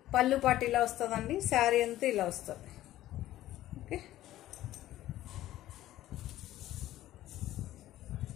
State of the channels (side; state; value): right; quieter; 14.3 dB